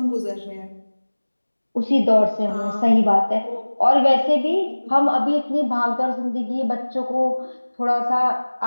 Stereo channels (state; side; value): inverted; both; correlation -1.00